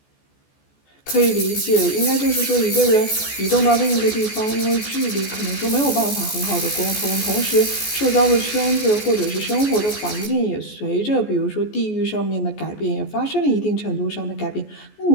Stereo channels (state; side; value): late; right; 14 ms